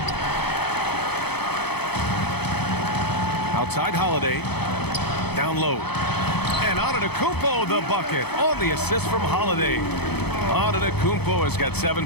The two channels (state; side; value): late; right; 0.98 ms